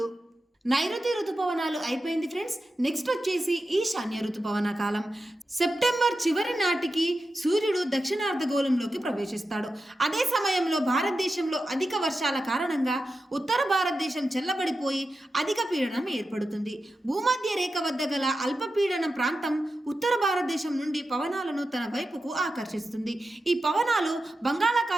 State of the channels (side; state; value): both; normal; correlation 0.91